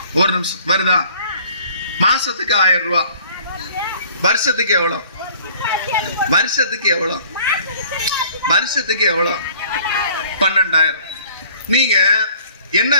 ஒரு நிமிஷம், வருதா? மாசத்துக்கு 1000 ரூபாய். வருஷத்துக்கு எவ்வளோ? வருஷத்துக்கு எவ்வளோ? வருஷத்துக்கு எவ்வளோ? 12,000. நீங்க என்ன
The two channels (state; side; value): inverted; both; correlation -0.53